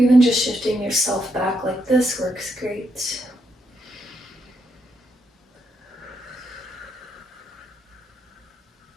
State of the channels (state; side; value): normal; both; correlation 0.79